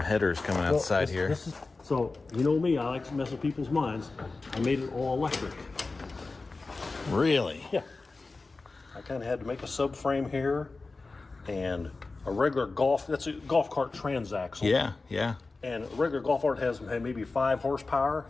headers coming outside Well, here. So, you know me, I like to mess with people's minds. I made it all electric. Really? Yeah. I kind of had to make a subframe here and a regular golf, that's a golf cart transaxle. Yeah. And a regular golf cart has maybe 5 horsepower.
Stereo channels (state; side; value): quieter; right; 3.7 dB